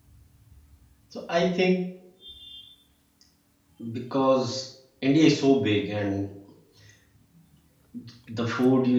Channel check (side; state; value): both; identical; correlation 1.00